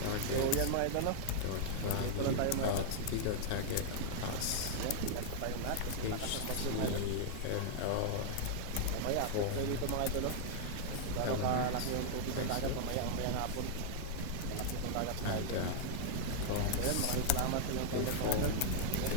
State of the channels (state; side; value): different; both; correlation -0.01